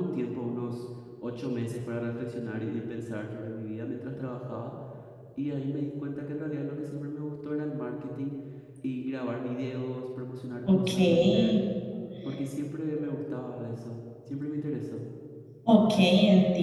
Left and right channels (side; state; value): both; identical; correlation 1.00